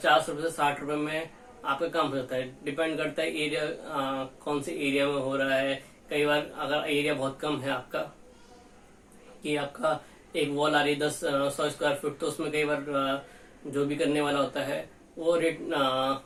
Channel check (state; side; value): identical; both; correlation 1.00